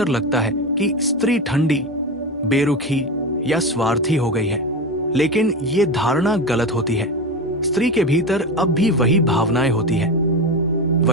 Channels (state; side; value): normal; both; correlation 0.21